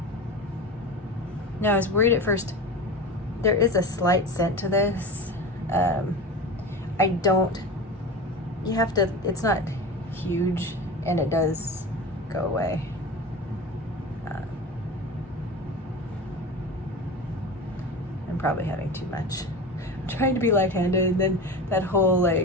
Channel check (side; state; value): both; normal; correlation 0.29